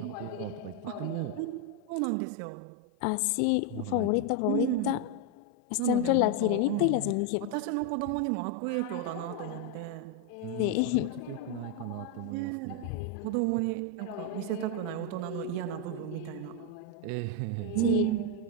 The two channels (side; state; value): both; different; correlation 0.01